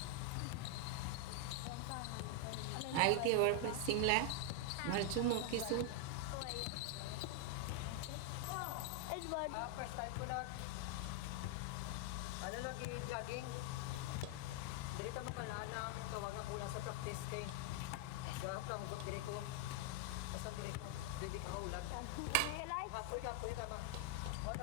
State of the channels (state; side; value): different; both; correlation 0.00